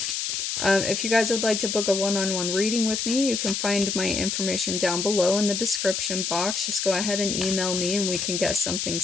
if you guys would like to book a one-on-one reading with me, you can find my information down below in the description box. Just go ahead and email me and we can get something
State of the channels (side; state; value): left; noise; hiss, 2 dB below the sound